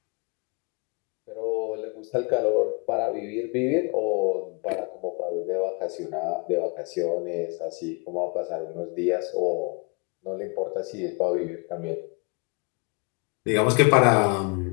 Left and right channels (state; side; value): quieter; right; 33.5 dB